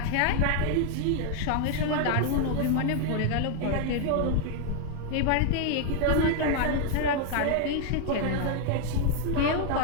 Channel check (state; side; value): different; both; correlation 0.00